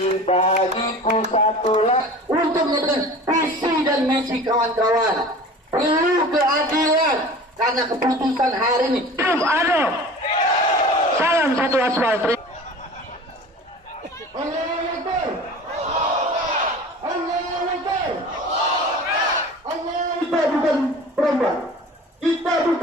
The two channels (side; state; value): both; normal; correlation 0.40